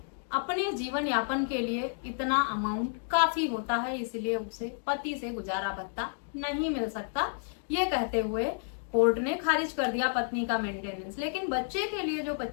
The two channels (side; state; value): right; silent; 57 dB below the other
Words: अपने जीवन यापन के लिए इतना अमाउंट काफी होता है, इसलिए उसे पति से गुजारा भत्ता नहीं मिल सकता। ये कहते हुए कोर्ट ने खारिज कर दिया पत्नी का मेंटेनेंस। लेकिन बच्चे के लिए जो